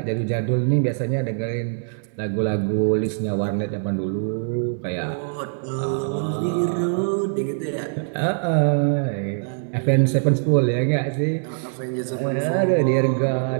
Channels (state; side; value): silent; left; digital silence